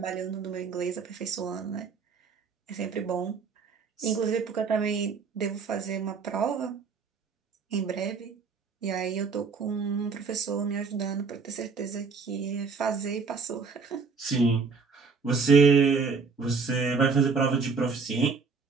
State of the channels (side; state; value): left; quieter; 4.9 dB